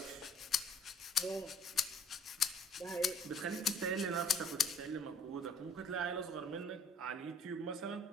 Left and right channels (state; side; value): normal; both; correlation 0.56